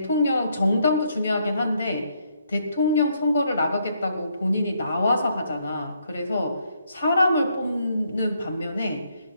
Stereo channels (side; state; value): both; inverted; correlation -0.73